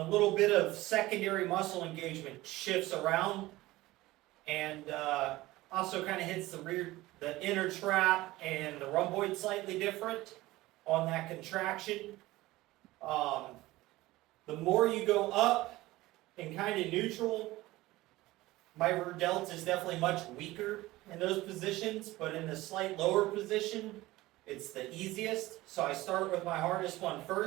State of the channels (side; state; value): left; quieter; 18.3 dB